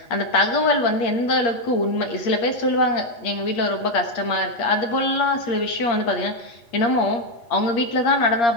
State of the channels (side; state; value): right; late; 8.6 ms